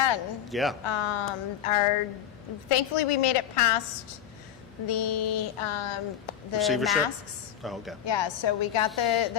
Yeah. Thankfully, we made it past the Receivership? masks. Oh, okay. Yeah, so we got the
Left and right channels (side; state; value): right; quieter; 10.0 dB